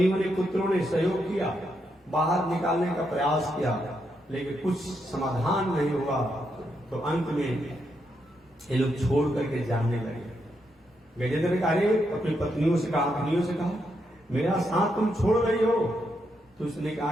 ने, पुत्रों ने सहयोग किया, बाहर निकालने का प्रयास किया, लेकिन कुछ समाधान नहीं हुआ, तो अंत में ये लोग छोड़ करके जानने लगे। गजेंद्र ने कहा, अपनी पत्नियों से कहा, मेरा साथ तुम छोड़ रही हो? तो उसने कहा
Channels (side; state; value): both; normal; correlation 0.81